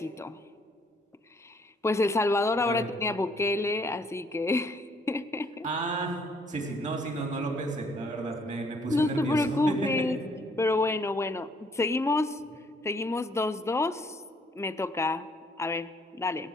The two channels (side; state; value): both; normal; correlation 0.64